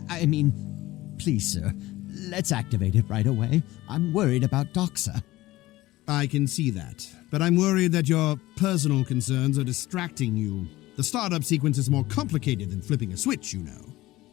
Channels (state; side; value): quieter; right; 17.6 dB